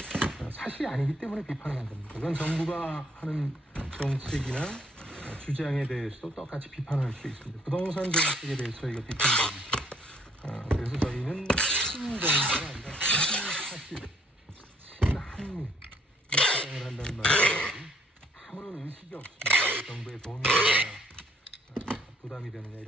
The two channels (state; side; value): normal; both; correlation 0.66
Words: 사실이 아니기 때문에 비판하는 겁니다. 그건 정부가 하는 정책이나 주장에 대해서도 똑같이 비판할 수 있습니다. 부동산 정책에 대해서 저희가 비판합니다. 그래서 저희는 친정부가 아니라 친사실, 친한미 주장을 한다는 말이 아무런 의식이 없습니다. 정부의 돈이 부담이 되느냐